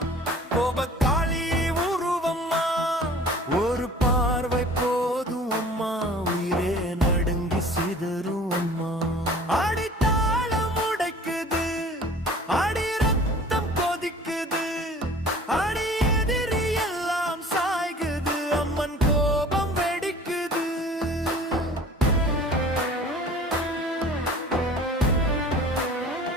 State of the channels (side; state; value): both; normal; correlation 0.47